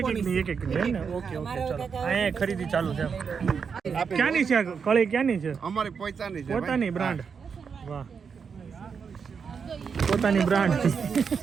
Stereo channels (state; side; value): quieter; left; 6.1 dB